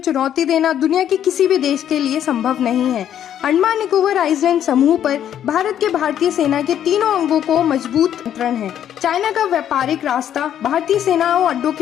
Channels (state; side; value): quieter; right; 10.2 dB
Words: देना दुनिया के किसी भी देश के लिए संभव नहीं है। अंडमान निकोबार आइलैंड समूह पर भारत के भारतीय सेना के तीनों अंगों को मजबूत नियंत्रण है। चाइना का व्यापारिक रास्ता भारतीय सेना और अड्डों